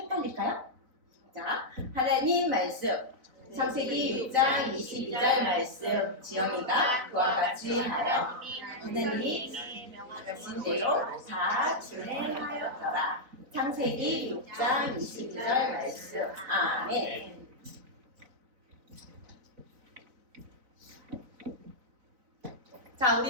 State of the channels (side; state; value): left; late; 4.0 ms